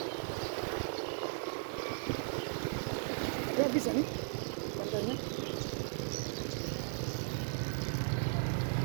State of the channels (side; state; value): left; silent; digital silence